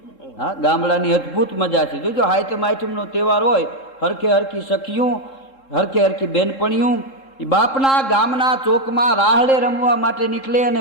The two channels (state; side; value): late; right; 3.7 ms